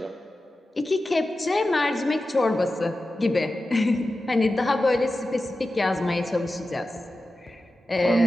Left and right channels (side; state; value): both; normal; correlation 0.93